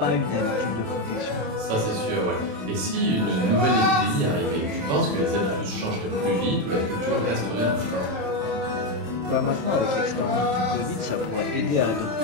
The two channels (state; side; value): late; left; 27 ms